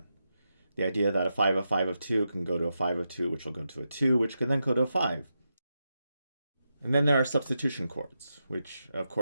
The idea that a 5 of 5 of 2 can go to a 5 of 2, which will go to a 2, which can then go to a 5. And then there are substitution chords, which of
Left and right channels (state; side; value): inverted; both; correlation -0.87